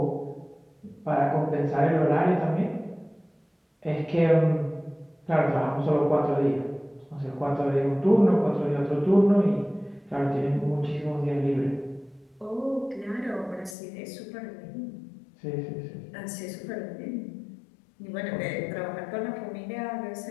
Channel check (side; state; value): right; drops out; at 13.8 s